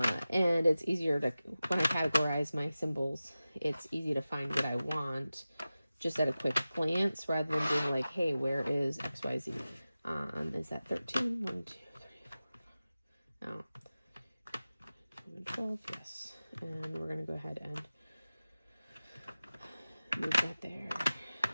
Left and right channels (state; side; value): inverted; both; correlation -0.96